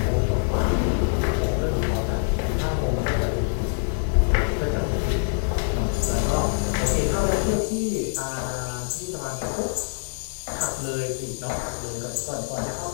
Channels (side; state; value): right; silent; 55 dB below the other